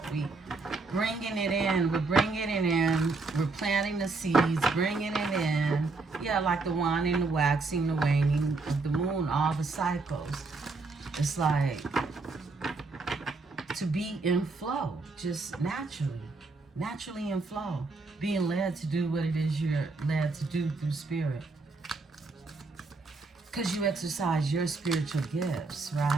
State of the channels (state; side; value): quieter; left; 3.8 dB